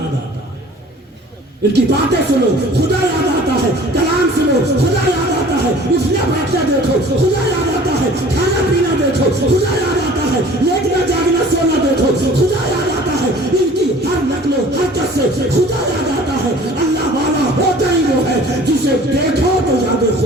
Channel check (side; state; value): both; normal; correlation 0.48